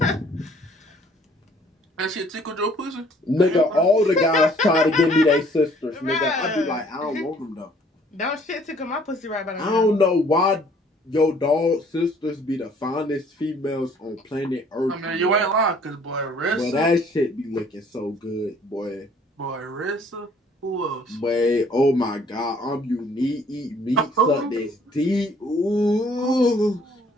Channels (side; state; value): both; normal; correlation 0.59